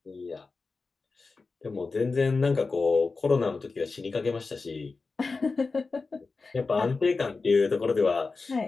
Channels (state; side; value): quieter; right; 4.1 dB